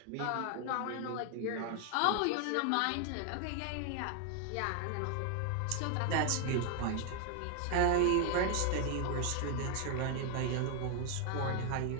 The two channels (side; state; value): both; different; correlation 0.00